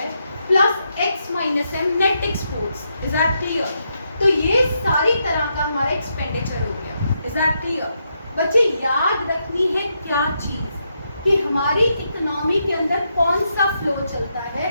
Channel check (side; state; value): both; inverted; correlation -0.81